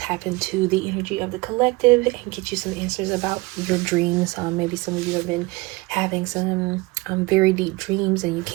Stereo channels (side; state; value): left; quieter; 23.1 dB